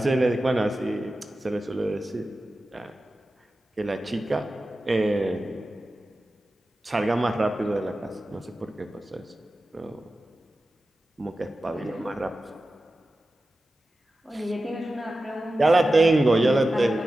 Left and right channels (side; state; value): both; normal; correlation 0.94